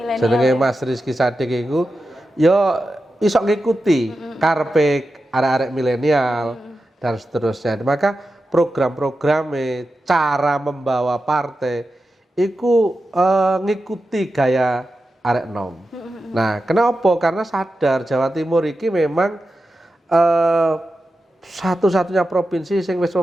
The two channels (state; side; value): normal; both; correlation 0.91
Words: Jenenge Mas Rizky Sadik iku ya iso ngikuti karepe arek-arek milenial dan seterusnya. Maka program-programe, cara membawa partai iku ngikuti gaya arek nom. Nah, kenapa? Karena sadar Jawa Timur iki memang satu-satunya provinsi sing wis